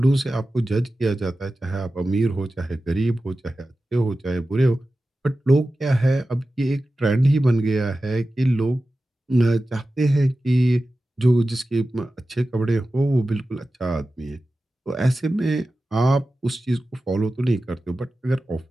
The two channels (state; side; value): normal; both; correlation 0.94